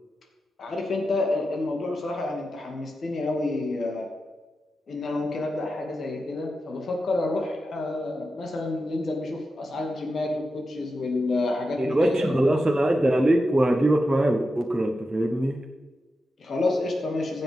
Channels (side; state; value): both; normal; correlation 0.90